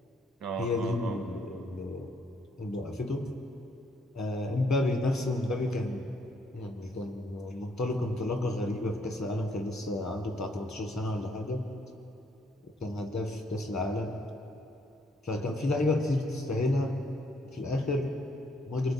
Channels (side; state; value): both; normal; correlation 0.70